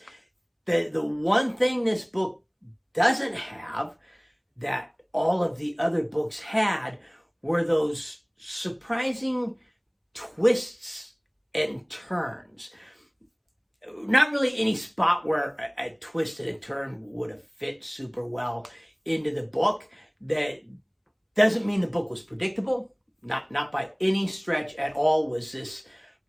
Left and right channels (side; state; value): both; identical; correlation 1.00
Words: The one thing this book doesn't have that all of the other books had were those surprising twists and turns. Not really any spot where a twist and a turn would have fit super well into the book. That doesn't mean the book was predictable. Not by any stretch at all was this